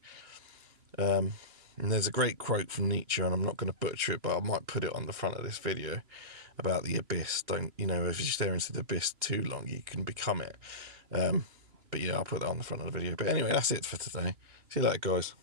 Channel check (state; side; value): late; left; 3.0 ms